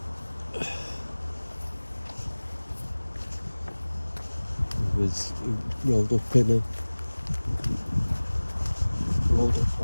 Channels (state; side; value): inverted; both; correlation -1.00